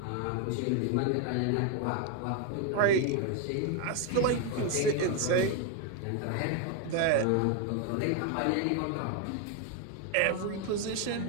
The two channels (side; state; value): both; different; correlation 0.01